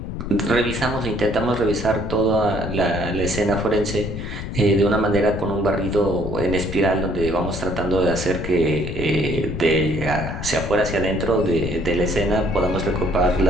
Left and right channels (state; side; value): noise; left; rumble, 6 dB below the sound